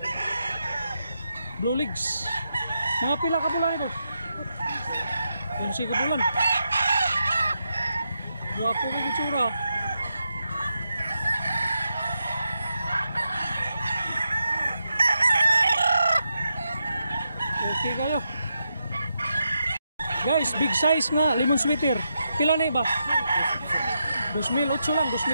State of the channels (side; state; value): both; inverted; correlation -0.85